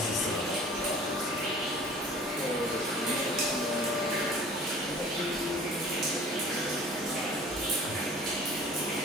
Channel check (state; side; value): normal; both; correlation 0.47